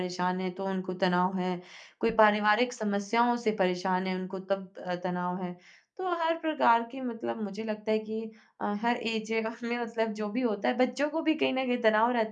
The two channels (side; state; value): both; identical; correlation 1.00